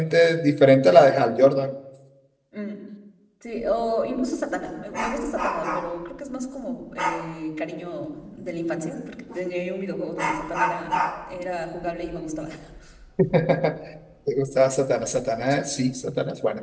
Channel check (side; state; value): both; identical; correlation 1.00